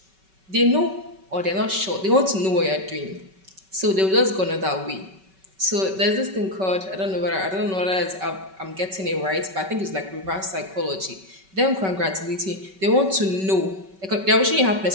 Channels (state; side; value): late; left; 5.3 ms